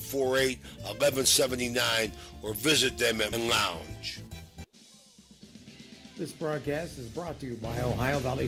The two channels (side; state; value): both; identical; correlation 1.00